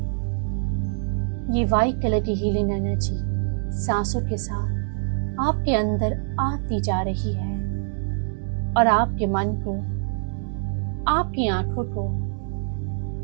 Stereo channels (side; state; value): left; silent; digital silence